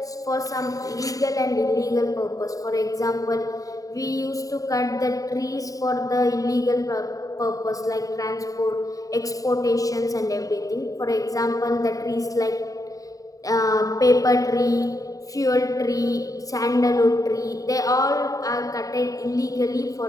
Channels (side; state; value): right; late; 0.17 ms